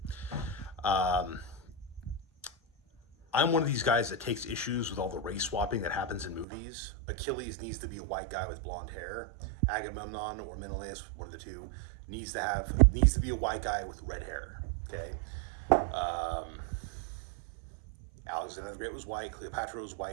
Um, I'm one of these guys that takes issues with all the race swapping that happens in movies. Achilles needs to be a white guy with blonde hair. Agamemnon or Menelaus, one of the two, needs to be a white guy with red hair. Okay. Um, Alexander the Great was white. Cleopatra was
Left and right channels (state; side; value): drops out; left; at 6.5 s